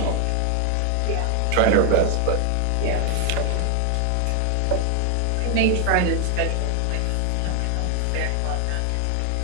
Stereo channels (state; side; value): different; both; correlation 0.00